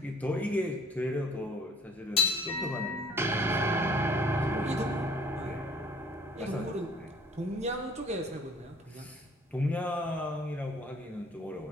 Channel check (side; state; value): both; normal; correlation 0.55